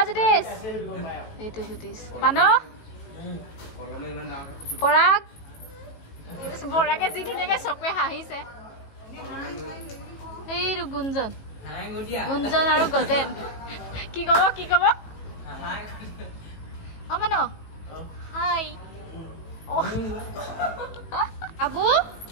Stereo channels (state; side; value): late; right; 18 ms